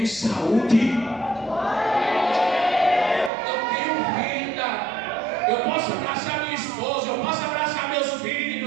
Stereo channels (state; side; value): drops out; left; at 3.3 s